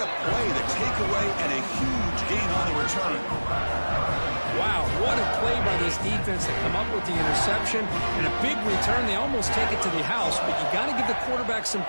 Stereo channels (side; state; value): both; inverted; correlation -1.00